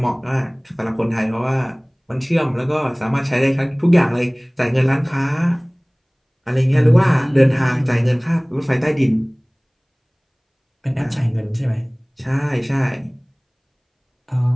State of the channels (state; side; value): identical; both; correlation 1.00